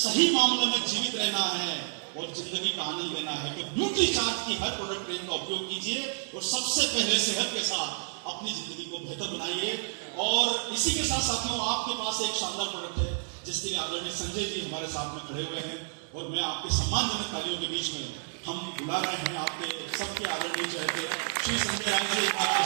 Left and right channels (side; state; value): left; silent; digital silence